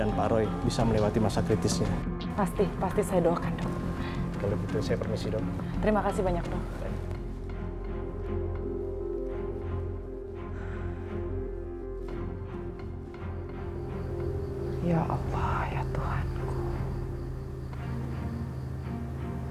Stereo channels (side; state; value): both; identical; correlation 1.00